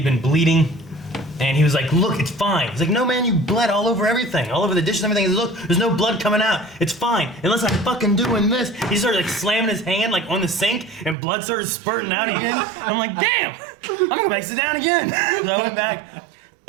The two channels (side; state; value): left; drops out; at 11.2 s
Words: been bleeding, and he was like, look, it's fine. He's like, no man, you bled all over everything, all over the dishes and everything. He's like, look, there's no blood coming out. It's fine, unless I'm fucking doing this. He started like slamming his hand like on the sink, and blood started spurting out again. I'm like, damn, I'm gonna go back sit down again. So I went back,